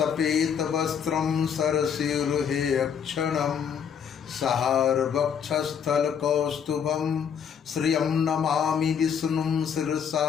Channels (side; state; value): right; quieter; 7.6 dB